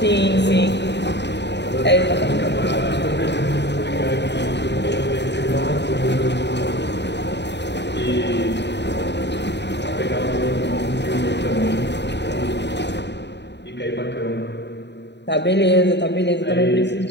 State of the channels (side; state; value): right; late; 0.50 ms